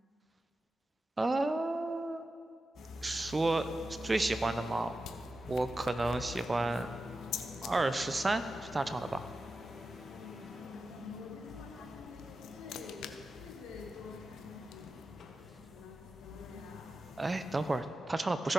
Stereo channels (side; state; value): both; normal; correlation 0.91